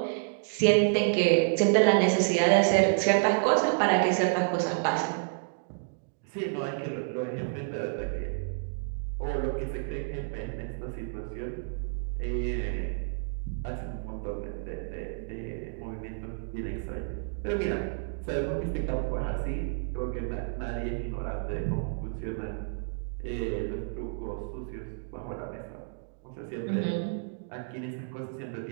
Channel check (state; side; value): silent; left; digital silence